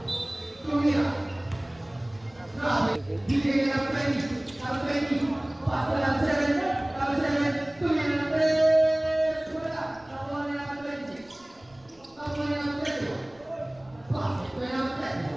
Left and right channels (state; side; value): noise; right; rumble, 30 dB below the sound